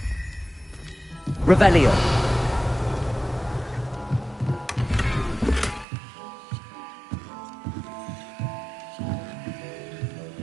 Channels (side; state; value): left; drops out; at 5.9 s